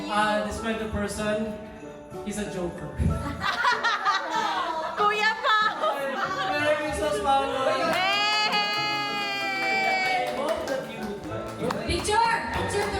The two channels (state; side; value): identical; both; correlation 1.00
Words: you... Describe the person. He's a joker. Kuya pa! Merry Christmas, Paolo! Hey! I hope that you would like. Picture! Picture